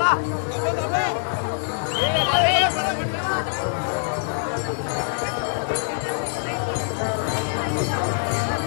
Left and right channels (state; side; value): silent; right; digital silence